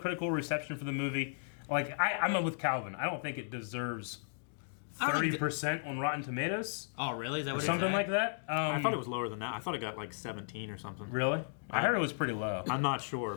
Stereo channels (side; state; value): right; silent; digital silence